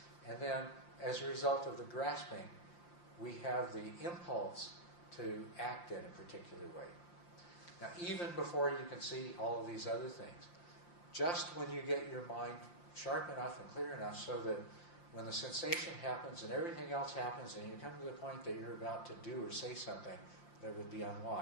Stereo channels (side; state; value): right; late; 5.8 ms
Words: And then as a result of the grasping, we have the impulse to act in a particular way. Now, even before you can see all of these other things, just when you get your mind sharp enough and clear enough so that when the sensation happens and everything else happens and you come to the point that you're about to do or say something that would be